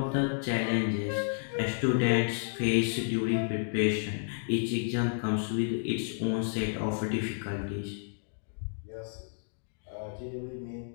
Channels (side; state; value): right; silent; digital silence